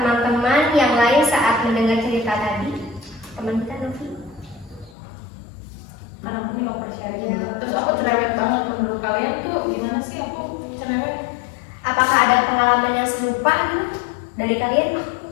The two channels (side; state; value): right; drops out; at 5.0 s